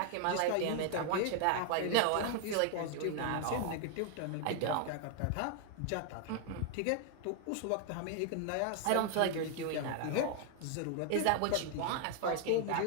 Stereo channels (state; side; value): different; both; correlation 0.00